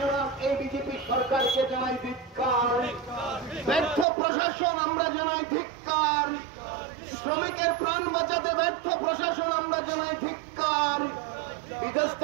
না এই বিজেপি সরকারকে জানাই ধিক্কার। ব্যর্থ প্রশাসন আমরা জানাই ধিক্কার। শ্রমিকের প্রাণ বাঁচাতে ব্যর্থ প্রশাসন আমরা জানাই ধিক্কার।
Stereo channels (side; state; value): left; drops out; at 4.0 s